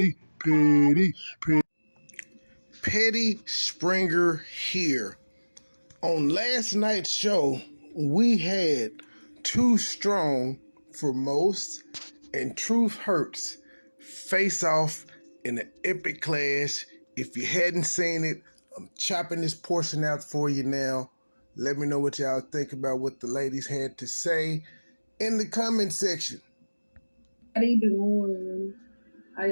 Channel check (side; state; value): both; inverted; correlation -1.00